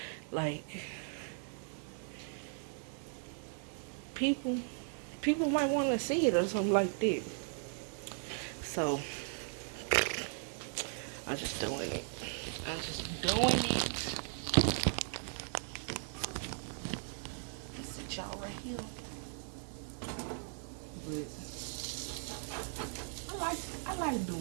like people might want to see it or something like that. So I'm just doing it. Let's sit y'all right here. But I like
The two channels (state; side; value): silent; left; 53 dB below the other